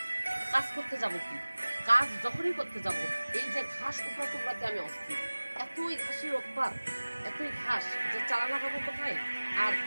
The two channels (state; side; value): inverted; both; correlation -1.00